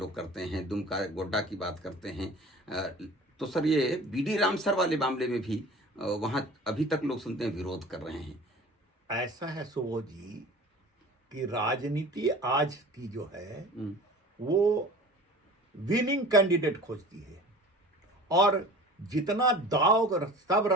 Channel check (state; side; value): normal; both; correlation 0.41